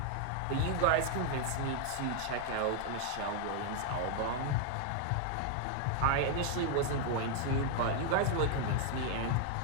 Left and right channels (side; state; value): both; different; correlation 0.00